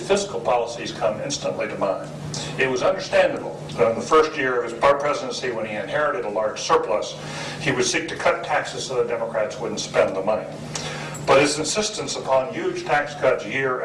fiscal policies come instantly to mind. It was understandable that in the first year of his presidency, when he inherited a large surplus, he would seek to cut taxes so the Democrats wouldn't spend the money. But his insistence upon huge tax cuts year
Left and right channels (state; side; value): identical; both; correlation 1.00